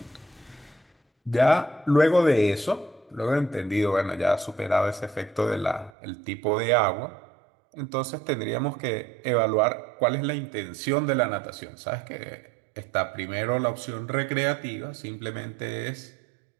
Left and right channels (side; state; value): left; drops out; at 5.9 s